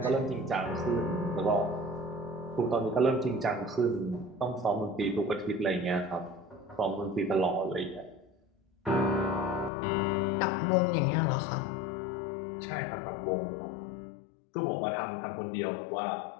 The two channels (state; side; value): drops out; right; at 9.7 s